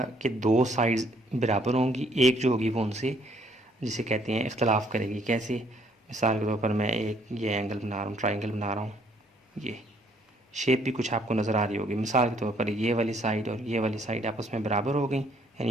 कि 2 साइड्स बराबर होंगी, एक जो होगी वो उनसे, जिसे कहते हैं, इख्तलाफ करेगी। कैसे? मिसाल के तौर पर मैं एक ये एंगल बना रहा हूँ, ट्राइंगल बना रहा हूँ, ये शेप भी कुछ आपको नज़र आ रही होगी। मिसाल के तौर पर ये वाली साइड और ये वाली साइड आपस में बराबर हो गई,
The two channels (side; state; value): both; normal; correlation 0.65